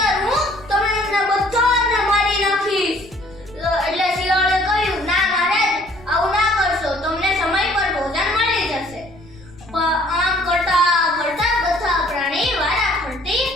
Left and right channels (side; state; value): left; noise; rumble, 23 dB below the sound